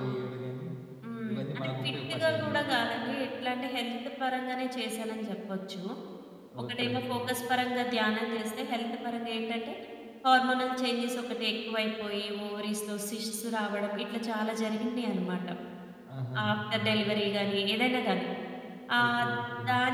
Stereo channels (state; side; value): identical; both; correlation 1.00